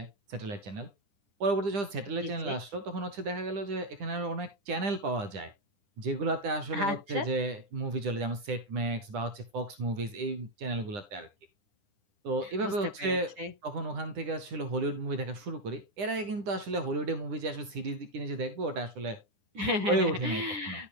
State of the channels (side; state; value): left; late; 9.9 ms